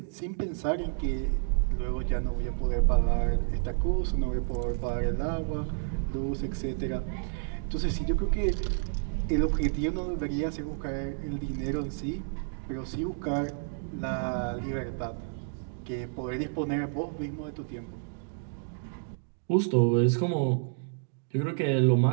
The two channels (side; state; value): left; silent; digital silence